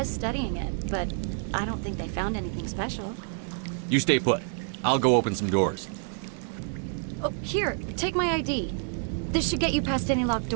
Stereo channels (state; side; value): silent; left; 59 dB below the other